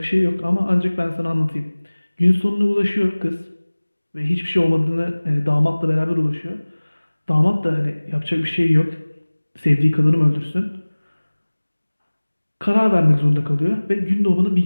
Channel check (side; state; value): both; inverted; correlation -1.00